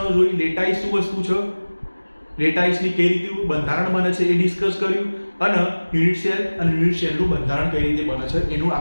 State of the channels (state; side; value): inverted; both; correlation -1.00